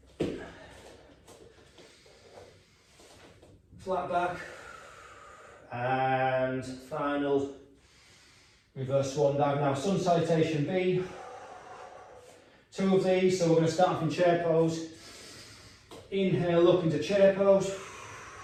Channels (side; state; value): both; identical; correlation 1.00